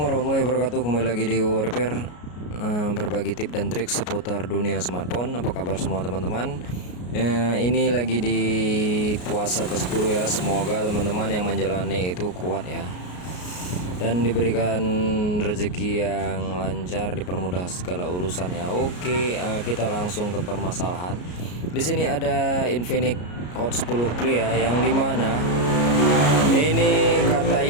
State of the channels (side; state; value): right; late; 33 ms